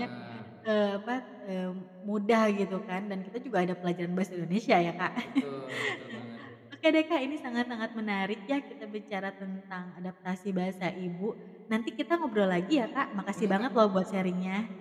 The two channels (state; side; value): identical; both; correlation 1.00